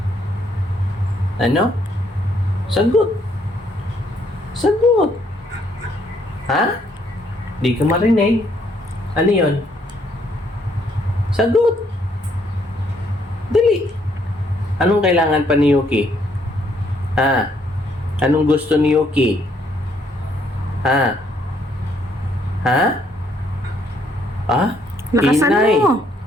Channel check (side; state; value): both; normal; correlation 0.69